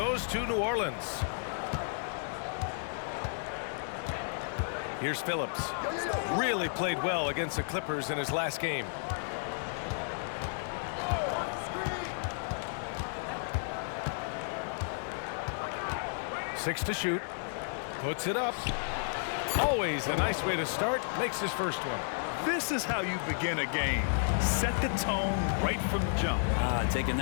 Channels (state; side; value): silent; right; 56 dB below the other